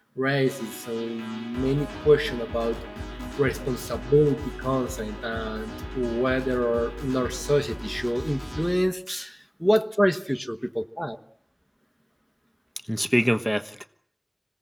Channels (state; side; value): identical; both; correlation 1.00